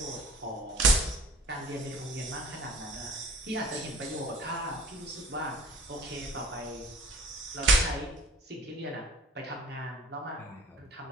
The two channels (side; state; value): both; normal; correlation 0.47